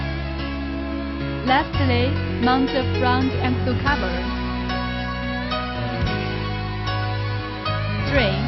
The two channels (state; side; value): identical; both; correlation 1.00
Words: Lastly, mount the front axle cover.